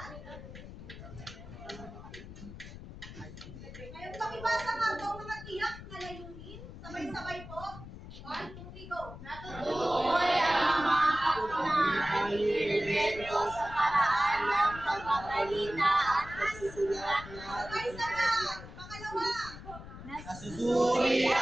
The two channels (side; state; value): left; noise; rumble, 13 dB below the sound